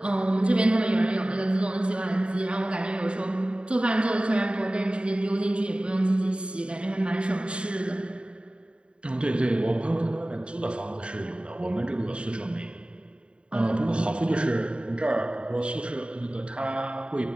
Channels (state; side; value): late; left; 0.055 ms